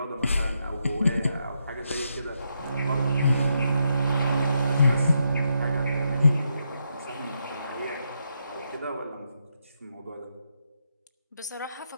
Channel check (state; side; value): inverted; both; correlation -0.81